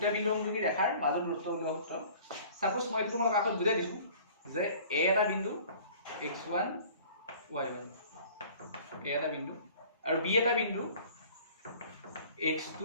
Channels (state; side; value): inverted; both; correlation -0.49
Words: বিন্দু সংযোগী ৰেখাৰ মাজৰ দূৰত্ব উলিওৱা সূত্ৰ সাপোজ মই এইটো তোমালোকক আগত বুজাই দিছো যে a এটা বিন্দু x1 y1 a এটা বিন্দু আৰু b এটা বিন্দু x2